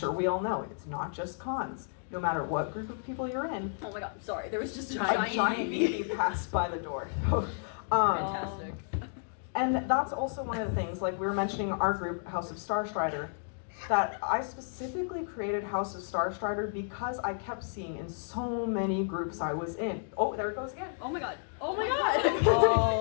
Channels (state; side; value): silent; right; digital silence